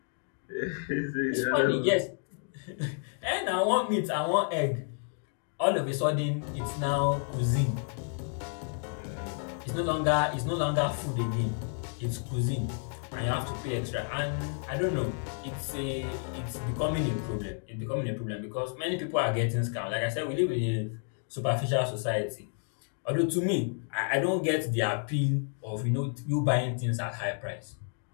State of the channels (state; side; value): silent; right; 57 dB below the other